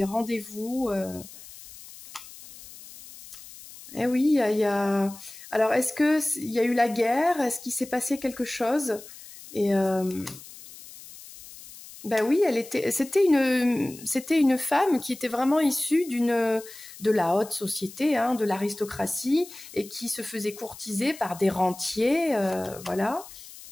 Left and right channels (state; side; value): noise; left; hiss, 17 dB below the sound